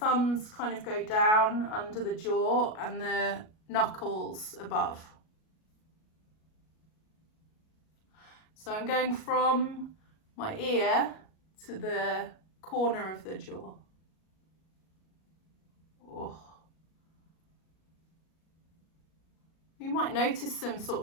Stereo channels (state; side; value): late; right; 37 ms